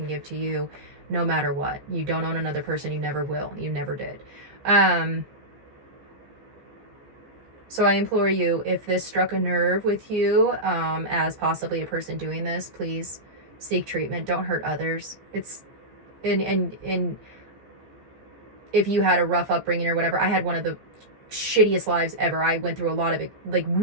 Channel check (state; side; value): late; left; 14 ms